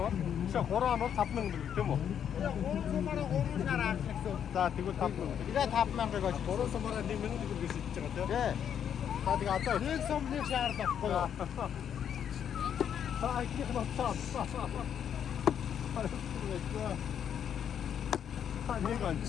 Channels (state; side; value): quieter; right; 8.8 dB